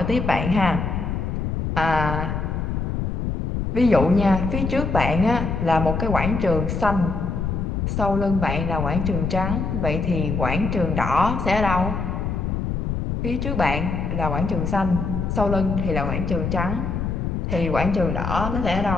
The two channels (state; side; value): noise; left; rumble, 2 dB below the sound